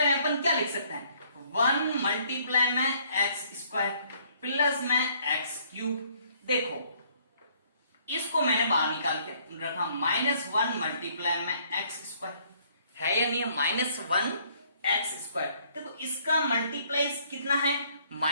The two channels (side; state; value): both; inverted; correlation -0.63